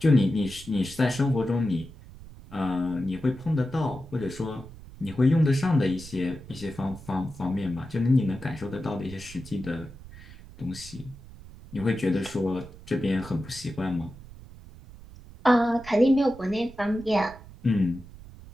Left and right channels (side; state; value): right; noise; rumble, 18 dB below the sound